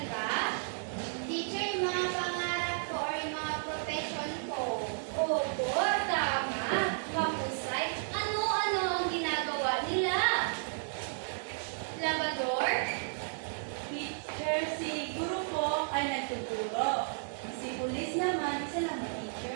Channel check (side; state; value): left; silent; digital silence